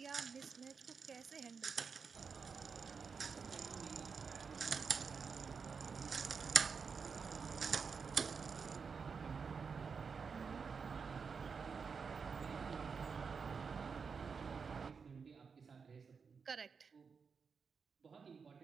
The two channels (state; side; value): quieter; left; 5.6 dB